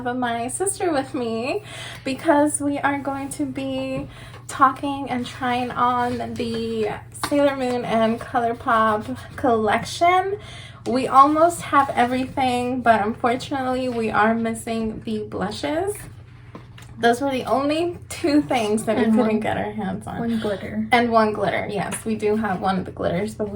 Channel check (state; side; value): identical; both; correlation 1.00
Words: my sister with me because we are going to be talking and trying on the Sailor Moon and Colourpop collection. We almost have everything, but unfortunately we are missing the blushes. Those were the only two things that we couldn't get our hands on. One glitter. And one glitter, yes. We do have one of the glitters, but